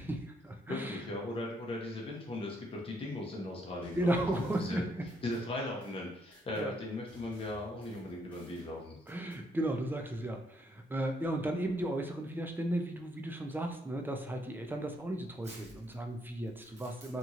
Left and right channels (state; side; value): normal; both; correlation 0.73